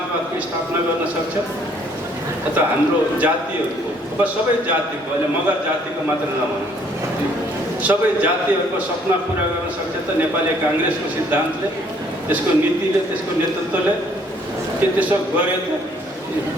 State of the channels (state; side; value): normal; both; correlation 0.62